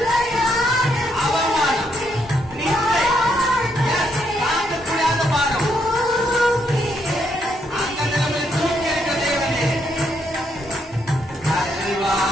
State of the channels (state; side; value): normal; both; correlation 0.76